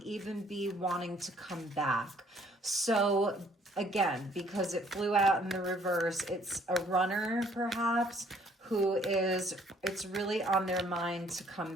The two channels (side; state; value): both; normal; correlation 0.62